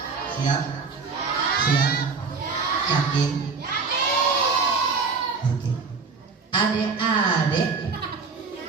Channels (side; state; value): left; quieter; 4.9 dB